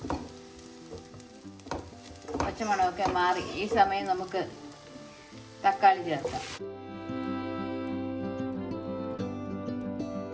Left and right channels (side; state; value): both; identical; correlation 1.00